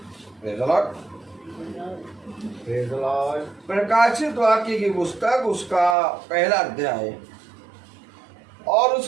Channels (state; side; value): drops out; left; at 6.0 s